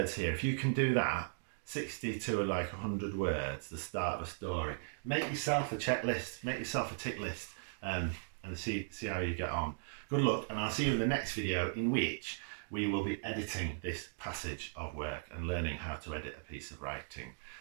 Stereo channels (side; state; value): left; silent; digital silence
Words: here. If you can do that, 60 to like 100 words, the start of a story, make yourself a checklist, make yourself a tick list, and see how you get on. Good luck, and I'll see you in the next video, in which we will be editing this passage of work and learning how to edit a piece of writing.